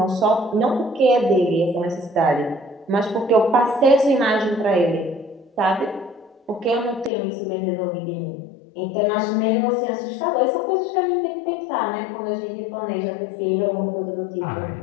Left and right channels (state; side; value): drops out; right; at 7.1 s